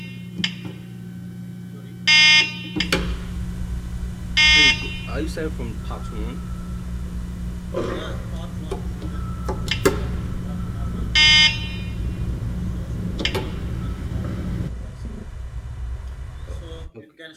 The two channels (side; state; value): both; identical; correlation 1.00